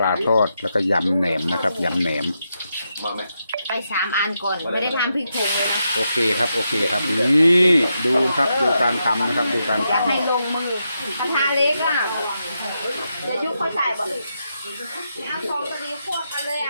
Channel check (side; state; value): both; inverted; correlation -0.84